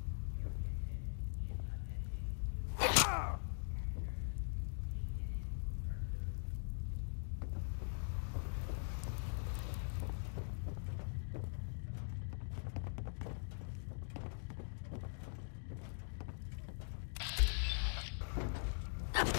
Fugitive is attempting to capture. Beginning pursuit.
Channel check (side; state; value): right; silent; digital silence